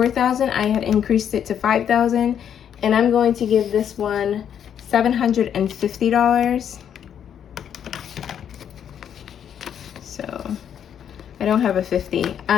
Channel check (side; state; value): right; quieter; 8.9 dB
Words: I had increased it to $5,000. And I'm going to give this one $750. So I don't have a 50.